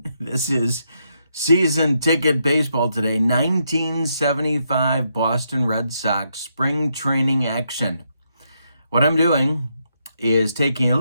This is season ticket baseball today, 1975 Boston Red Sox spring training action. What I'm doing is taking a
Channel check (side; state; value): both; inverted; correlation -0.79